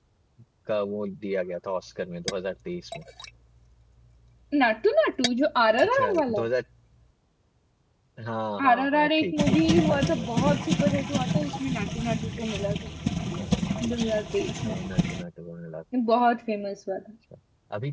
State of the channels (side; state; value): both; identical; correlation 1.00